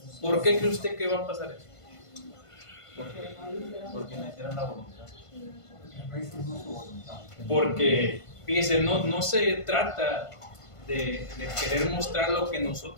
¿Por qué cree usted que va a pasar eso? ¿Por qué? Porque me hicieron la voluntad. Porque, fíjese, no se trata de querer mostrar lo que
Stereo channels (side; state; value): right; late; 1.5 ms